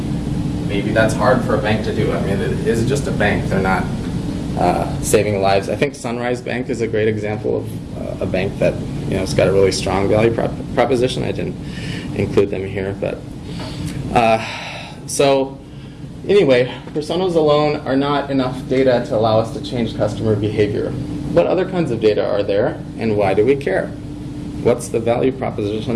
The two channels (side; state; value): both; identical; correlation 1.00